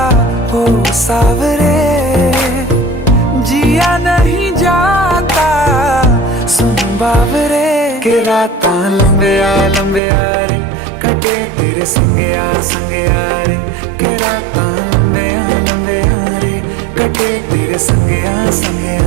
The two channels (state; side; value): drops out; left; at 10.0 s